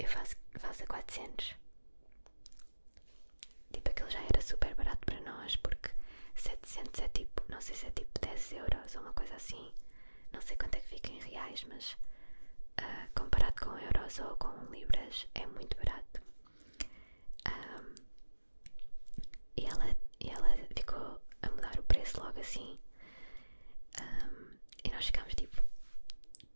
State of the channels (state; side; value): inverted; both; correlation -1.00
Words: faço a 400. Tipo, aquilo já era super barato para nós, porque 700 é tipo, não sei se é tipo 10 euros ou uma coisa assim. Não sei quanto é que fica em reais, mas comparado com euros ou com libras é muito barato. E ela ficou a mudar o preço logo assim, e nós ficámos tipo,